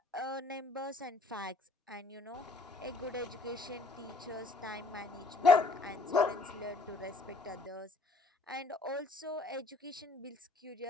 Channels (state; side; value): quieter; right; 3.3 dB